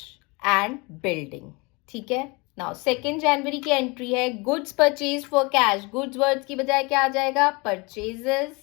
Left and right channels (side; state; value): right; quieter; 27.5 dB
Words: and building. ठीक है? Now 2nd January की एंट्री है goods purchased for cash. goods words की बजाय क्या आ जाएगा? purchases.